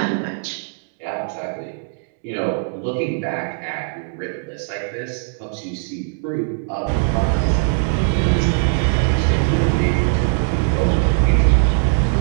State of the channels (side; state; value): left; silent; digital silence